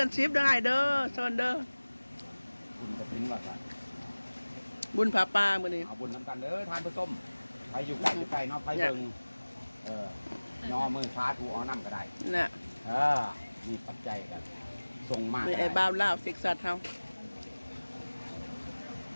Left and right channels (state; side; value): inverted; both; correlation -1.00